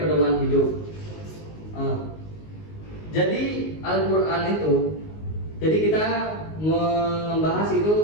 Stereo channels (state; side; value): late; right; 19 ms